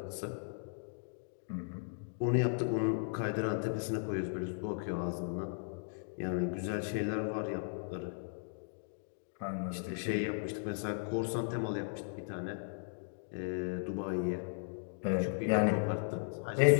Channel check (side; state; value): right; silent; digital silence